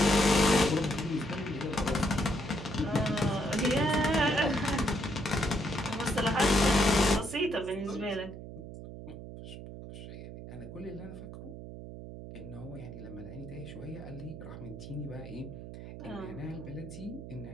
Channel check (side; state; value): right; noise; hum, 11 dB below the sound